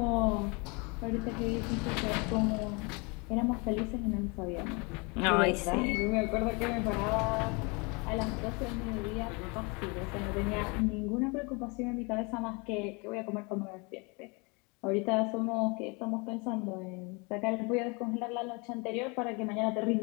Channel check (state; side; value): quieter; right; 30.0 dB